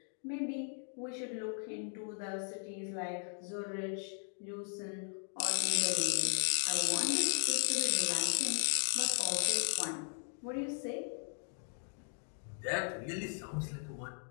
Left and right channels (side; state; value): right; silent; 53 dB below the other